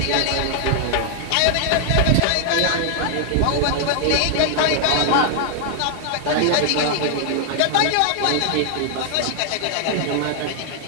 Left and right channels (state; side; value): different; both; correlation 0.00